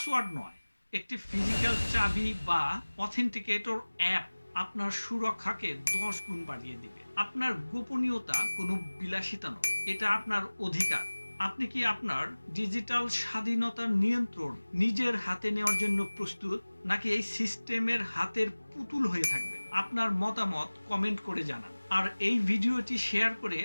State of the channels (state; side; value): inverted; both; correlation -1.00